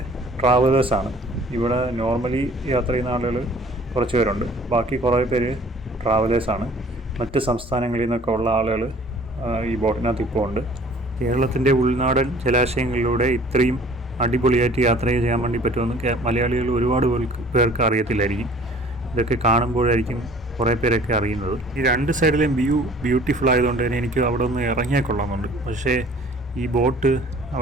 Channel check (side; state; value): both; normal; correlation 0.51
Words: ട്രാവലേഴ്സാണ്. ഇവിടെ നോർമലി യാത്ര ചെയ്യുന്ന ആളുകൾ കുറച്ച് പേരുണ്ട്, ബാക്കി കുറേ പേര് ട്രാവലേഴ്സാണ്. മറ്റ് സംസ്ഥാനങ്ങളിൽ നിന്നൊക്കെ ഉള്ള ആളുകൾ ഈ ബോട്ടിനകത്ത് ഇപ്പോൾ ഉണ്ട്. കേരളത്തിൻ്റെ ഉൾനാടൻ ജലാശയങ്ങളിലൂടെ ഇത്രയും അടിപൊളിയായിട്ട് യാത്ര ചെയ്യാൻ വേണ്ടി പറ്റുമെന്ന് മലയാളികൾ ഒരുപാട് പേർക്ക് അറിയത്തില്ലായിരിക്കും. ഇതൊക്കെ കാണുമ്പോഴായിരിക്കും കുറേ പേരൊക്കെ അറിയുന്നത്. ഈ രണ്ട് സൈഡിലെയും വ്യൂ ബ്യൂട്ടിഫുൾ ആയതുകൊണ്ട് തന്നെ എനിക്ക് അവിടെ ഒന്ന് ഇറങ്ങിയാൽ കൊള്ളാമെന്നുണ്ട്. പക്ഷേ ഈ ബോട്ട്